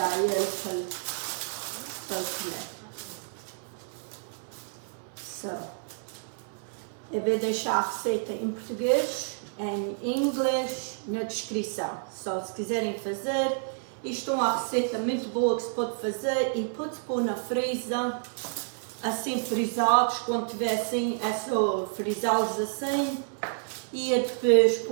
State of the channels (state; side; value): silent; left; 58 dB below the other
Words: ele para comer. So, eu vou deixar a receita em português, em inglês, na descrição. Só se quiserem fazer. Isto é uma receita muito boa que se pode fazer e pode-se pôr na freezer, assim frisados, quando tiver assim, é só frisá-los assim e depois